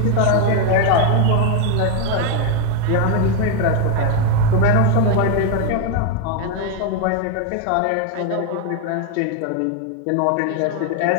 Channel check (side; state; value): both; different; correlation 0.01